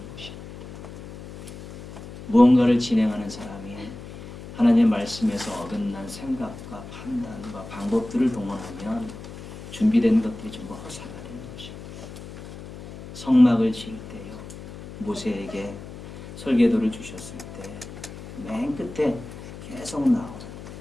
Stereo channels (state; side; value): noise; left; hum, 13 dB below the sound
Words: 것입니다. 무언가를 진행하는 사람이 하나님의 말씀에서 어긋난 생각과 판단과 방법들을 동원하면 준비된 것들이 전부 허사가 되는 것입니다. 성막을 지을 때요. 모세에게 설계도를 주셨을 때 맨 끝에 계속 나오는